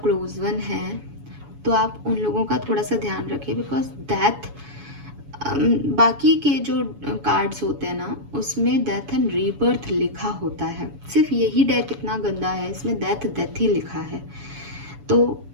वन है तो आप उन लोगों का थोड़ा सा ध्यान रखें, बिकॉज डेथ, बाकी के जो कार्ड्स होते हैं ना उसमें डेथ एंड रीबर्थ लिखा होता है, सिर्फ यही डेक इतना गंदा है, इसमें डेथ ही लिखा है। तो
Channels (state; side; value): late; left; 7.1 ms